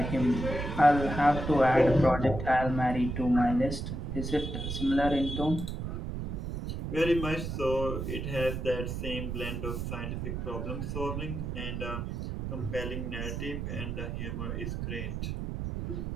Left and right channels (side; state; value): right; noise; rumble, 4 dB below the sound